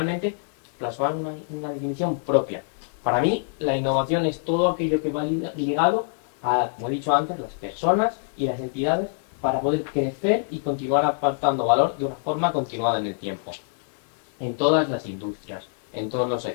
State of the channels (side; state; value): right; silent; 62 dB below the other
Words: plasmar una definición propia. Para mí, la innovación es todo aquello que va ligado a, como he dicho antes, las personas y las entidades para poder crecer y continuar aportando valor de una forma continuada en el tiempo. En todas las industrias, en todos los